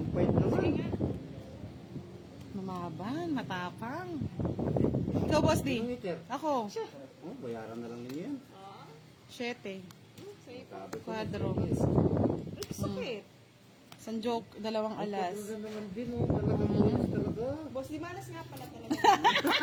point naman. Mamaban, matapang. Ikaw, Boss D. Yung meter. Ako, Oh, bayaran na lang ninyo yan. 7. Sabi ko. Quadro. Sakit. San joke, 2 alas. Ganda naman din, oh. Talagang bonus talaga. Boss, di malas nga pala talaga.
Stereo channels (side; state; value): both; identical; correlation 1.00